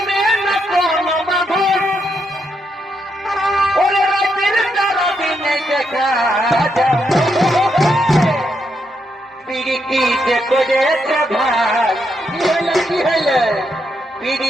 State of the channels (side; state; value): both; normal; correlation 0.80